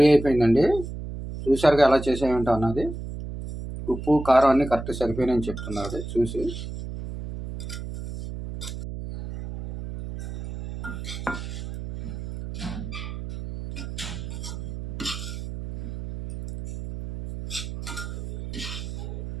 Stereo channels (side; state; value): right; noise; hum, 8 dB below the sound